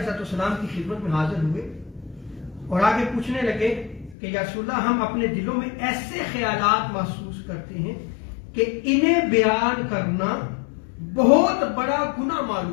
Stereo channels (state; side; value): drops out; right; at 4.2 s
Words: السلام کی خدمت میں حاضر ہوئے اور آگے پوچھنے لگے کہ یا رسول اللہ ہم اپنے دلوں میں ایسے خیالات محسوس کرتے ہیں کہ انہیں بیان کرنا بہت بڑا گناہ